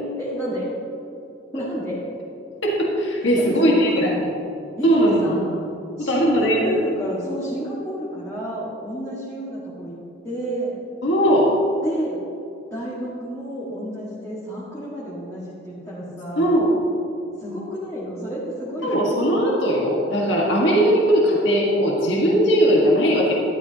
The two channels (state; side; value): normal; both; correlation 0.48